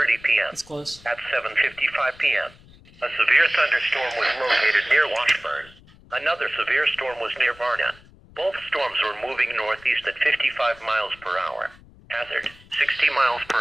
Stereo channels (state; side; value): noise; left; rumble, 25 dB below the sound